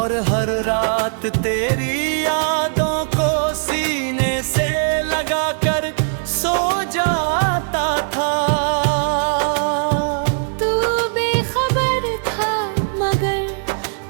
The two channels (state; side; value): silent; left; 62 dB below the other